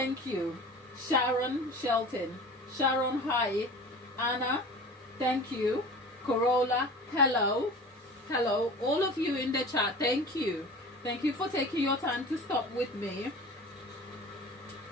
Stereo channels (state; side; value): normal; both; correlation 0.38